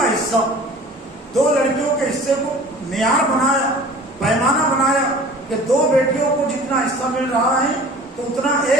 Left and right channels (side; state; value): both; normal; correlation 0.44